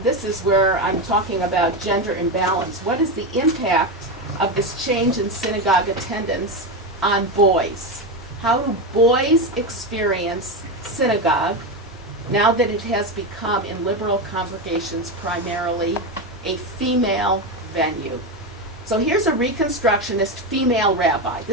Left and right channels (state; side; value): normal; both; correlation 0.14